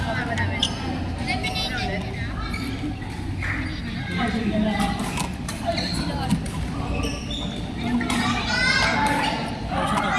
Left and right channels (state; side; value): identical; both; correlation 1.00